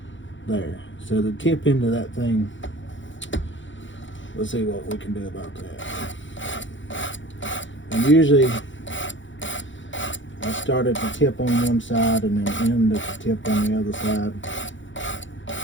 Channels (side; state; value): right; late; 0.55 ms